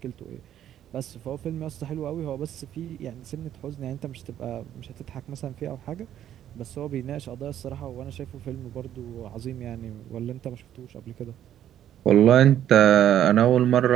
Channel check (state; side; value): quieter; left; 11.0 dB